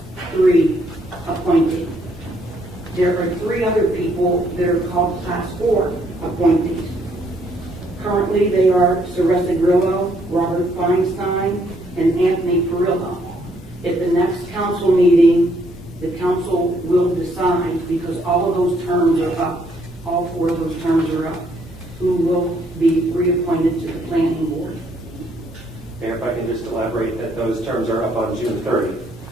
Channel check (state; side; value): normal; both; correlation 0.69